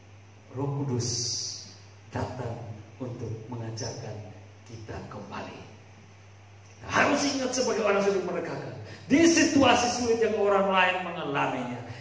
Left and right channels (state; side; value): identical; both; correlation 1.00